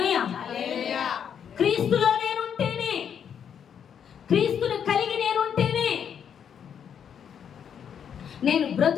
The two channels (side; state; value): right; quieter; 8.1 dB